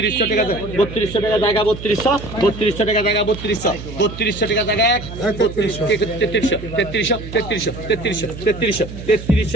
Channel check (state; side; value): noise; right; hum, 11 dB below the sound